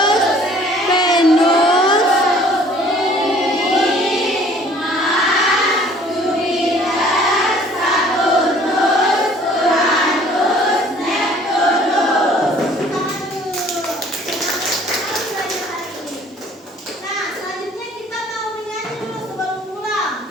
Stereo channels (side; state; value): both; normal; correlation 0.54